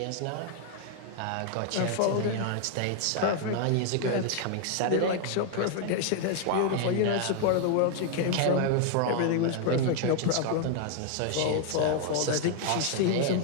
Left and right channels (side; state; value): both; different; correlation 0.00